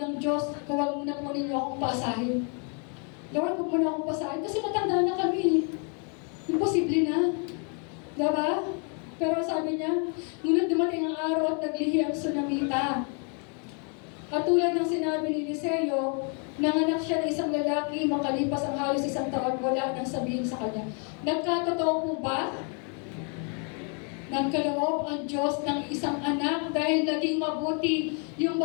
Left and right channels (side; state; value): right; quieter; 38.9 dB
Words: ng Diyos, huwag mo na po ninyo akong paasahin. Lord, huwag mo na akong paasahin, kasi matanda na kami. Imposible na. Diba? Pero sabi niya, ngunit dumating ang araw at naglihi ang Sunamita. At tulad ng sinabi ni Eliseo, nanganak siya ng isang lalaki, makalipas ang halos 1 taon, wala nang sabihin sa kanya. Nagkatotoo po ba? Nagkaloob ang Diyos ng isang anak dahil naging mabuti yung